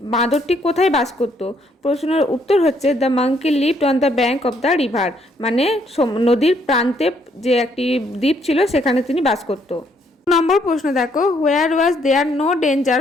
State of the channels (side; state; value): both; normal; correlation 0.69